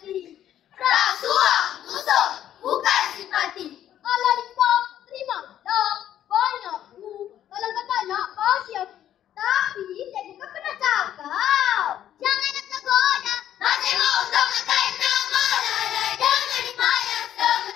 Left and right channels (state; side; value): quieter; right; 11.1 dB